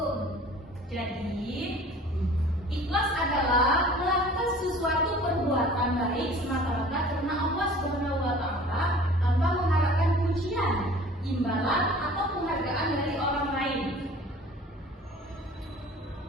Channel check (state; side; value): normal; both; correlation 0.47